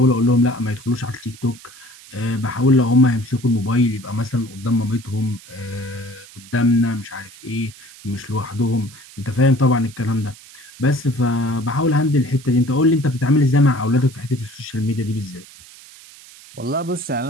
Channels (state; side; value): noise; right; hiss, 20 dB below the sound